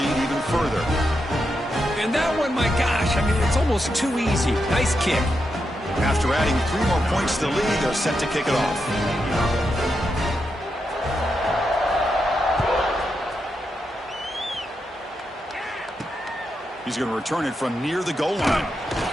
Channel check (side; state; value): both; normal; correlation 0.85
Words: even further. And that one, my gosh, I mean, it's almost too easy. Nice kick. After adding 3 more points to the lead, they're set to kick it off. He's going to return it from near the goal line.